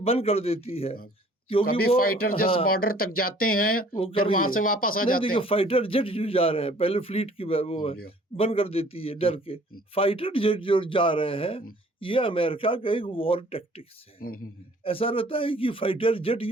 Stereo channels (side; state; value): both; normal; correlation 0.55